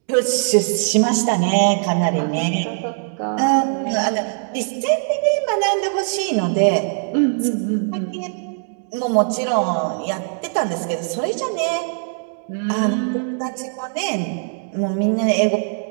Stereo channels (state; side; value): silent; left; digital silence